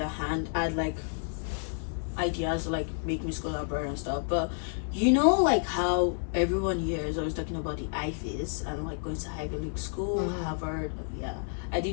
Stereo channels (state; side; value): silent; right; digital silence